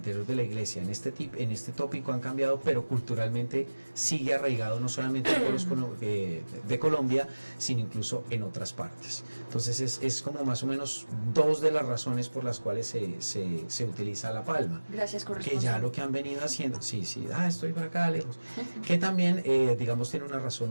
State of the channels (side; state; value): both; inverted; correlation -1.00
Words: de la iglesia en este tópico han cambiado, pero culturalmente sigue arraigado no solamente en pueblos de Colombia, sino incluso en otras partes. Entonces es como más o menos dos de las razones por las cuales se utiliza la palma. Gracias, corresponsal. Que ya lo que han venido haciendo, sí, estoy por acá lejos, que también digamos tiene una